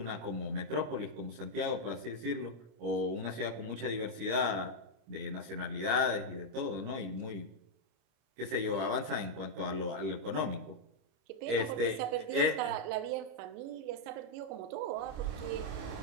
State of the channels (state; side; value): late; left; 26 ms